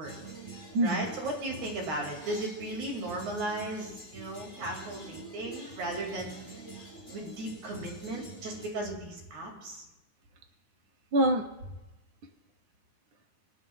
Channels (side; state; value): left; late; 9.7 ms